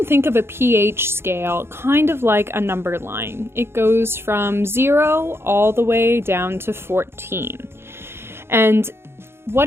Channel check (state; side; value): late; left; 0.12 ms